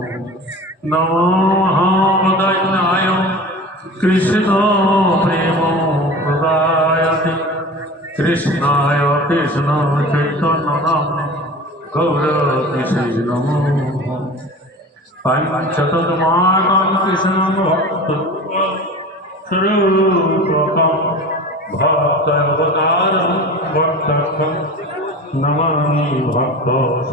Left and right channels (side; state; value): both; normal; correlation 0.35